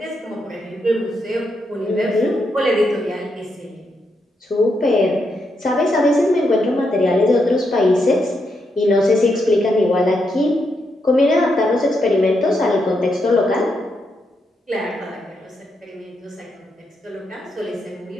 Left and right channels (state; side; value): normal; both; correlation 0.81